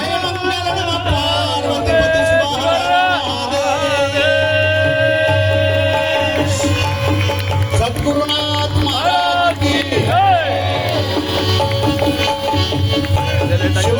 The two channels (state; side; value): noise; left; rumble, 25 dB below the sound